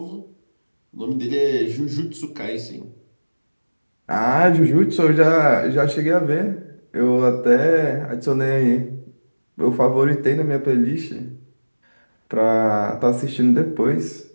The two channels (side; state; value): both; inverted; correlation -1.00